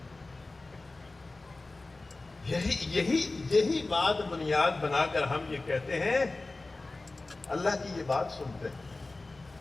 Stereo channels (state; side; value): quieter; right; 3.2 dB